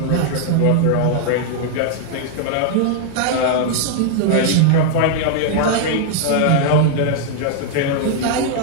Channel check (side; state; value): both; different; correlation -0.01